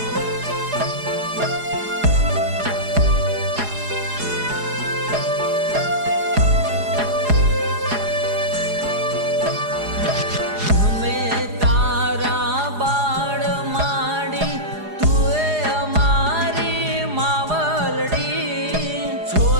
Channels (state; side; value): late; left; 4.8 ms